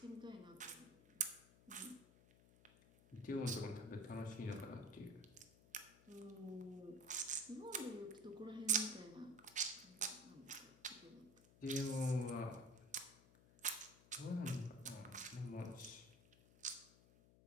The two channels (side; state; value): left; noise; hum, 24 dB below the sound